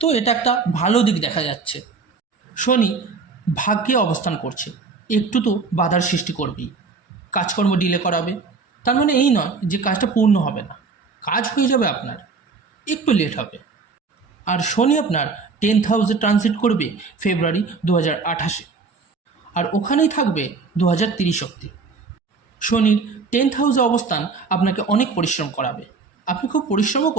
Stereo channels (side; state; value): left; quieter; 4.6 dB